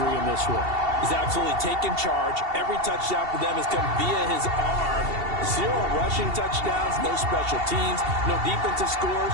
in this one. He's absolutely taken charge. Every touchdown for them has come via his arm. 0 rushing touchdowns, no special teams, no defensive scores.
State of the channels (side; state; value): left; late; 2.7 ms